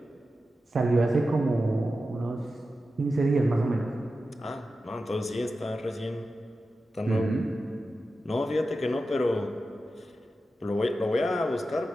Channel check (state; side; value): normal; both; correlation 0.92